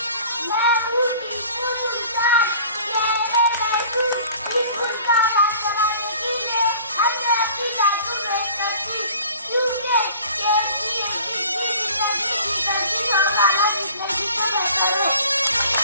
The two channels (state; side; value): inverted; both; correlation -0.47